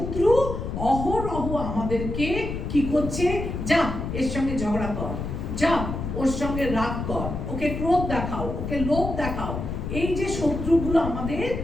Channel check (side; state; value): left; noise; rumble, 5 dB below the sound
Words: অহরহ আমাদেরকে কি করছে? যা এর সঙ্গে ঝগড়া কর, যা ওর সঙ্গে রাগ কর, ওকে ক্রোধ দেখাও, ওকে লোভ দেখাও। এই যে শত্রুগুলো আমাদের